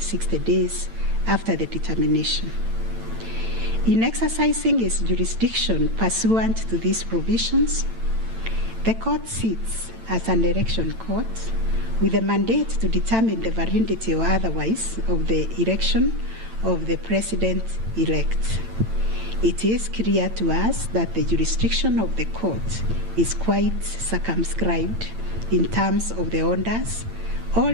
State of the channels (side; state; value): left; late; 8.9 ms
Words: days after the determination. In exercising its jurisdiction pursuant to these provisions, the court sits as an election court with a mandate to determine the validity or otherwise of the election of the President-elect. It is clear to us that the jurisdiction of the court is quite circumscribed in terms of the orders or